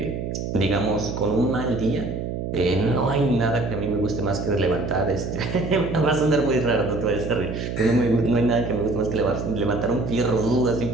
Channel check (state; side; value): noise; right; hum, 4 dB below the sound